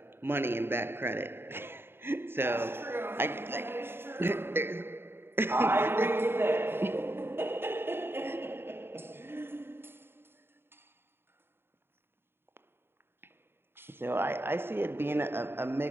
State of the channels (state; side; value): late; left; 0.11 ms